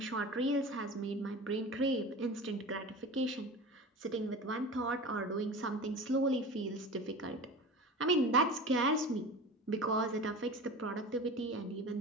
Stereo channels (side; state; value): both; normal; correlation 0.33